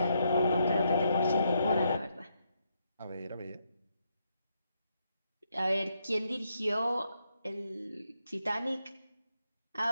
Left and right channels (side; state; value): both; inverted; correlation -0.78